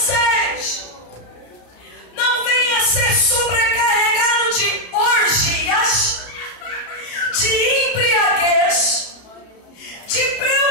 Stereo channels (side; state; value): right; late; 33 ms